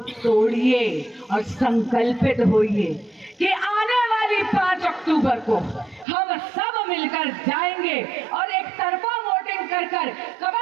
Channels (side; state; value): left; drops out; at 6.1 s